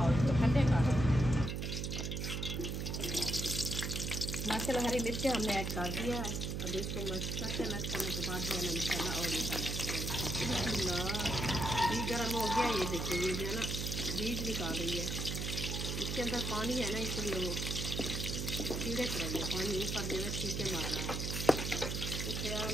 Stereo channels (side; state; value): right; noise; hum, 2 dB below the sound